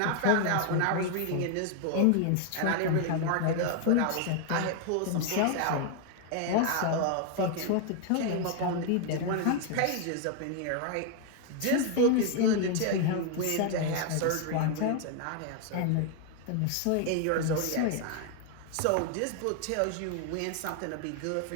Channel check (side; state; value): both; different; correlation 0.00